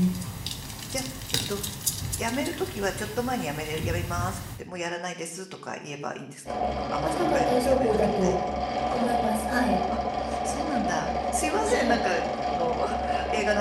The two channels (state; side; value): identical; both; correlation 1.00